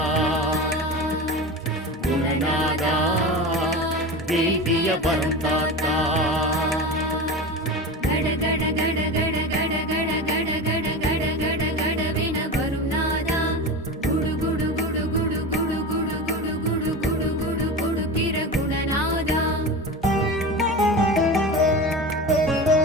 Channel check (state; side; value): normal; both; correlation 0.27